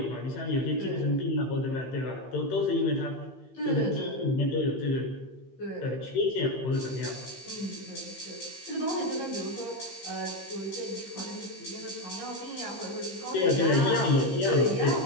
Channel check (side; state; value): right; late; 15 ms